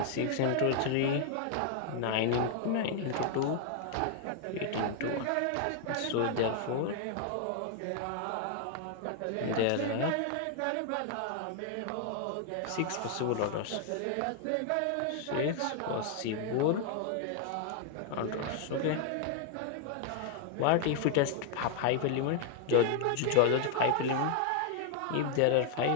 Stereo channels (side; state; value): both; different; correlation 0.00